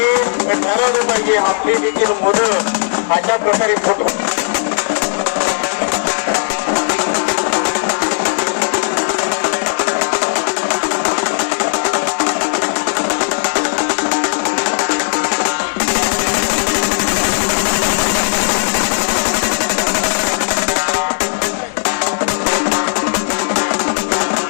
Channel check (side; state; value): right; silent; digital silence